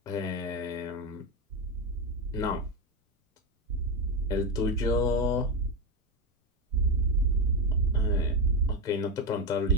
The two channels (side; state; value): both; normal; correlation 0.11